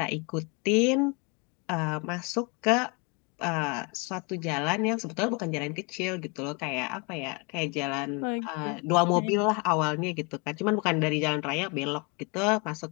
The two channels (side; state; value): right; quieter; 31.3 dB